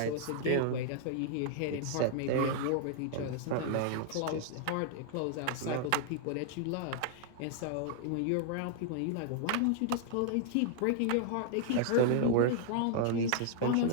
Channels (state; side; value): different; both; correlation -0.01